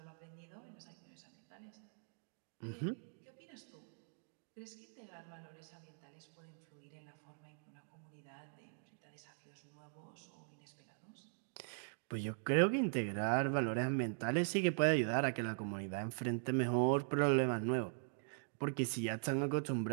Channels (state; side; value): silent; left; digital silence